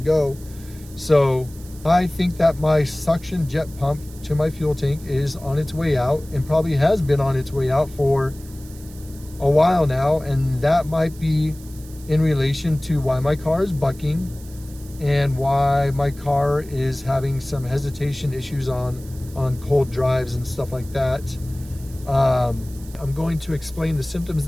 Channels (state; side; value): noise; right; hiss, 21 dB below the sound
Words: So I think that my suction jet pump to my fuel tank is on its way out, and probably has been on its way out for a while now, and that might be in relation to why my car is bucking and why my car is having some hesitation issues on cold drives and stuff like that. I'm going to explain the symptoms